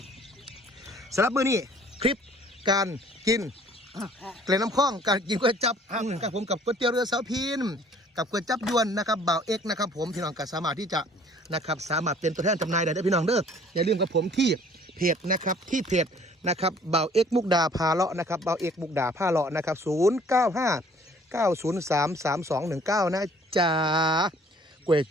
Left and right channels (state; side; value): normal; both; correlation 0.55